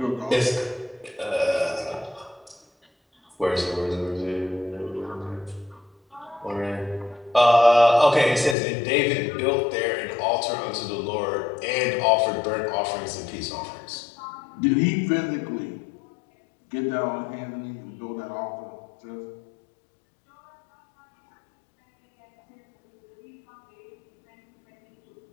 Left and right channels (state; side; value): drops out; right; at 8.6 s